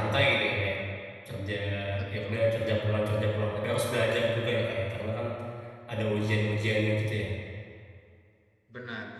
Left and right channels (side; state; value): both; identical; correlation 1.00